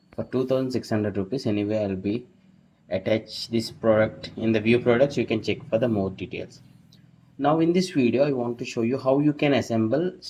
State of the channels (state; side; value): identical; both; correlation 1.00